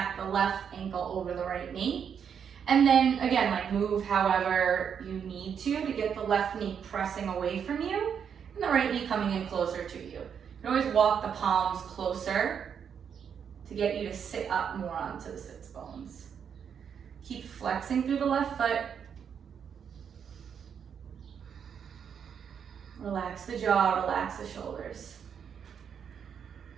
the left ankle over the right knee. And then, again, like move however you need to get the left knee pressing away from you, and the right knee coming in closer to you. You can always walk the palms closer to get you to sit up more onto the sits bones. Keep flexing through the left foot. Relax the jaw, relax the shoulders.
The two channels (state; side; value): quieter; left; 7.5 dB